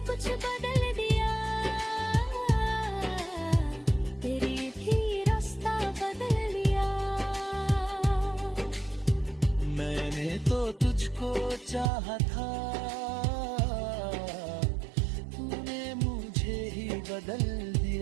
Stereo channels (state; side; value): drops out; left; at 11.9 s